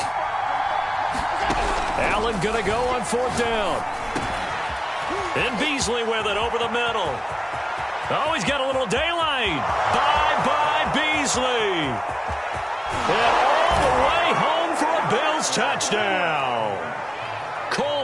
Allen going to go on 4th down. And Beasley with it over the middle. Oh, he's got a little daylight. Bye-bye, Beasley. And all the way home for a Bills touchdown.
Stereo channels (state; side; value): identical; both; correlation 1.00